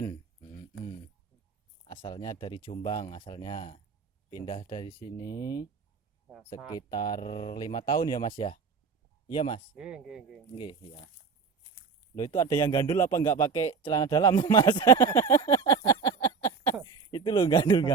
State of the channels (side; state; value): left; quieter; 5.6 dB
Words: Asalnya dari Jombang, asalnya pindah dari sini sekitar 5 tahun ya Mas ya. Iya Mas. Nggih, ya. Loh itu ada yang gandul apa nggak pakai celana dalam Mas? Itu loh